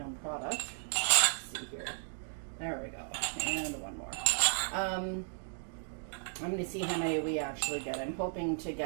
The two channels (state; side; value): silent; left; digital silence